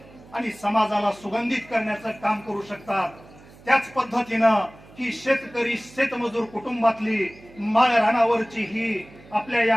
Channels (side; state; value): right; noise; hum, 23 dB below the sound